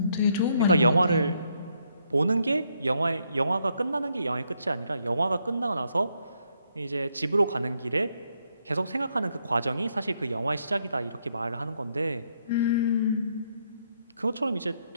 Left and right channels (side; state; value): both; inverted; correlation -0.75